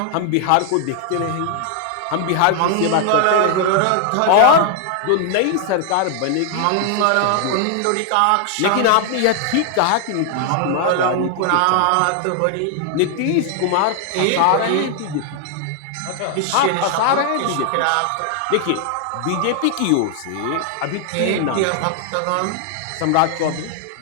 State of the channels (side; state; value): both; different; correlation 0.00